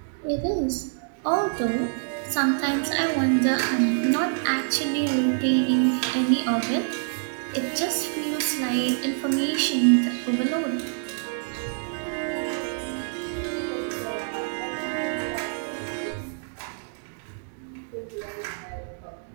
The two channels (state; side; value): silent; left; 61 dB below the other